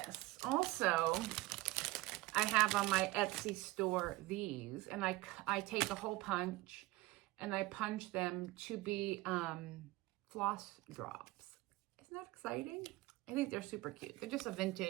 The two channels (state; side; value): quieter; left; 20.2 dB